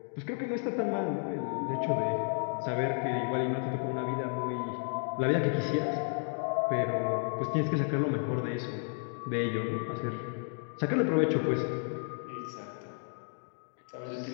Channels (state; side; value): silent; right; 56 dB below the other